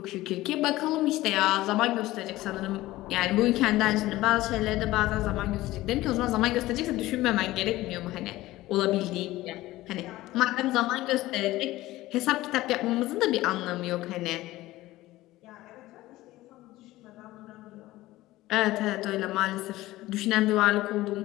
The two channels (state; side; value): quieter; right; 17.2 dB